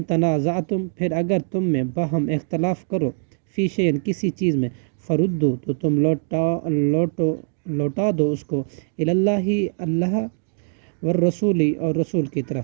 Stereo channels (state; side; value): silent; left; digital silence